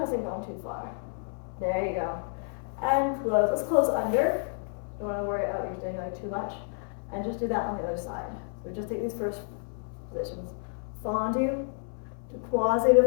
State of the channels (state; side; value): silent; right; 58 dB below the other